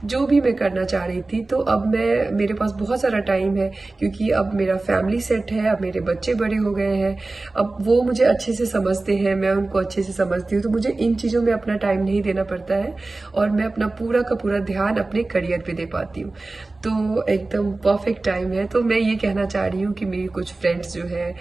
जो भी मैं करना चाह रही थी, तो अब मेरे पास बहुत सारा टाइम है, क्योंकि अब मेरा फैमिली सेट है, अब मेरे बच्चे बड़े हो गए हैं। अब वो मुझे अच्छे से समझते हैं, मैं उनको अच्छे से समझती हूँ, तो मुझे इन चीज़ों में अपना टाइम नहीं देना पड़ता है, और मैं अपना पूरा का पूरा ध्यान अपने करियर पे दे पाती हूँ। तो एकदम परफेक्ट टाइम है। तो मैं ये कहना चाह रही हूँ कि मेरी कुछ फ्रेंड्स जो है,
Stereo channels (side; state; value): left; quieter; 3.2 dB